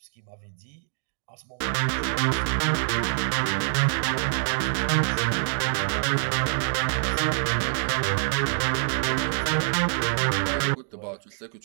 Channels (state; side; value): silent; left; digital silence